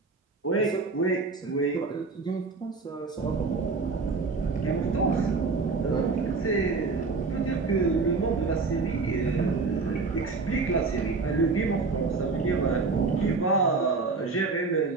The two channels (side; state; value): left; quieter; 4.2 dB